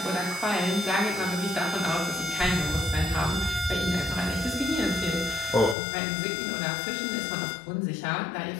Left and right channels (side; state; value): right; drops out; at 5.8 s